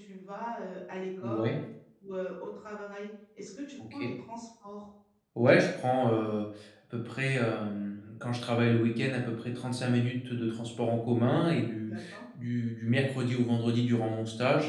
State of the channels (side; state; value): both; identical; correlation 1.00